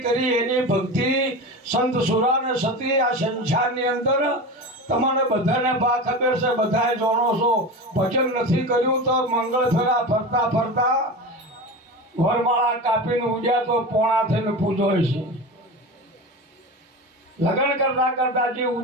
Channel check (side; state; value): both; normal; correlation 0.27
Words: કરી એની ભક્તિ સંત સુરા ને સતી આ સંસારની અંદર તમને બધાને બા ખબર છે બધાએ જાણો છો ભજન નથી કર્યું તો મંગળ ફેરા ફરતા ફરતા વરમાળા કાપીને ઉડ્યા તો પોણા થઈને પૂજો છે લગ્ન કરતા કરતા જે